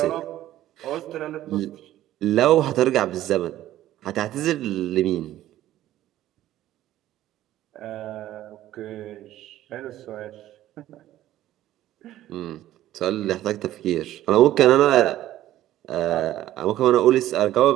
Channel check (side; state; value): left; quieter; 13.7 dB